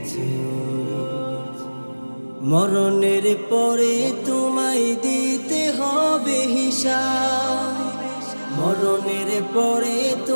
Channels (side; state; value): both; inverted; correlation -1.00